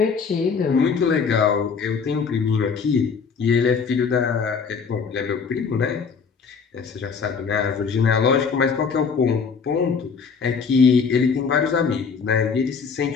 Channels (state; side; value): quieter; right; 5.7 dB